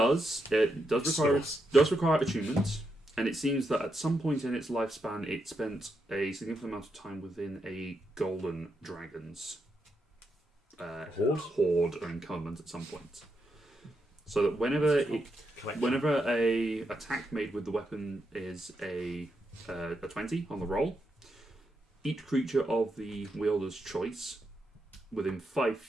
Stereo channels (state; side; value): normal; both; correlation 0.83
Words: require attunement, and it seems that at some point in its lifespan, it spent a significant amount of time within a golden dragon's horde or encampment at some point. So that whenever a attack made with the weapon is a 20 on the roll, each creature of the wielder's choice within 5